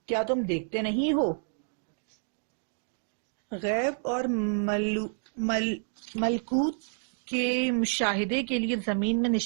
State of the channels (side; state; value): left; silent; digital silence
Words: کیا تم دیکھتے نہیں ہو؟ غیب اور ملکوت کے مشاہدے کے لیے زمین میں